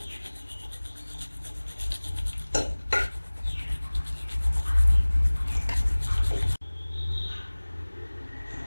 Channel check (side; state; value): both; inverted; correlation -1.00